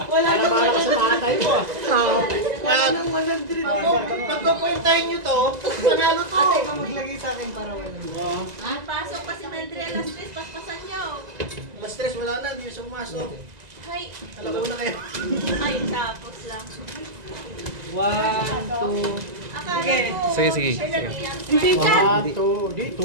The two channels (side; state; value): left; late; 2.0 ms